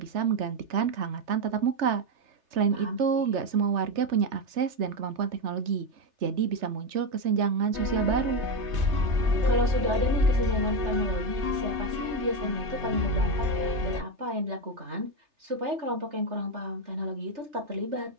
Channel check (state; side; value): late; left; 3.3 ms